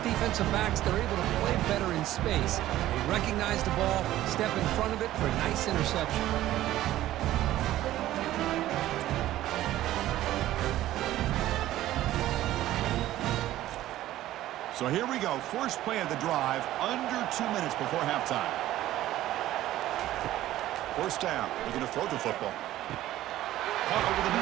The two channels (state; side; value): quieter; left; 14.4 dB